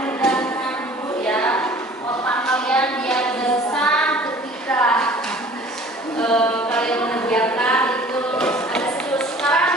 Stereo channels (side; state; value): both; normal; correlation 0.48